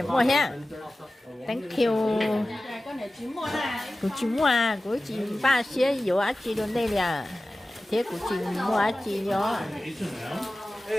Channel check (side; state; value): both; normal; correlation 0.96